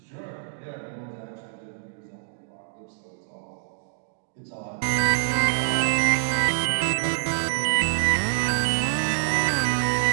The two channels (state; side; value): silent; left; digital silence